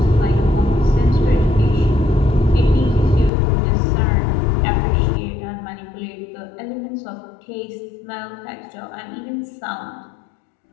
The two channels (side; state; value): right; drops out; at 3.3 s